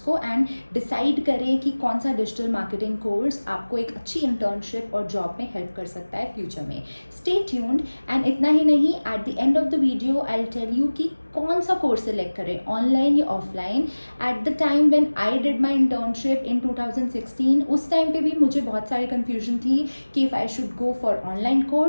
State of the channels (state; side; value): inverted; both; correlation -1.00